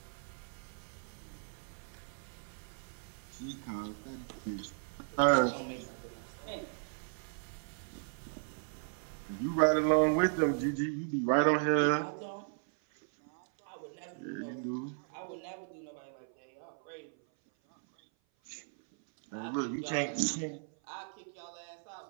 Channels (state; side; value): silent; left; 54 dB below the other